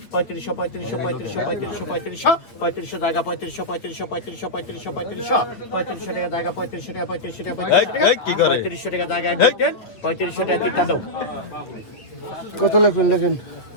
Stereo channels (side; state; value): right; late; 9.0 ms